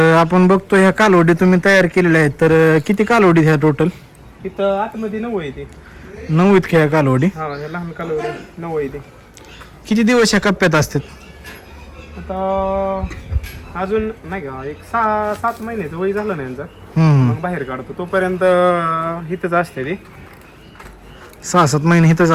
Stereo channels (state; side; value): identical; both; correlation 1.00